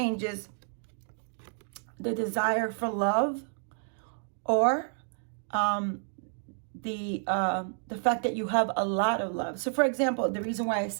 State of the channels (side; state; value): left; silent; digital silence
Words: is the desire for love, or the fact that you have a lot of love. So for example, the reason why I